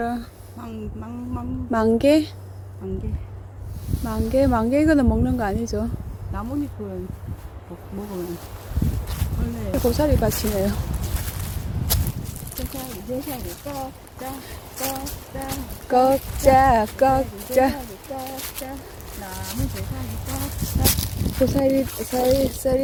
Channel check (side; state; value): both; identical; correlation 1.00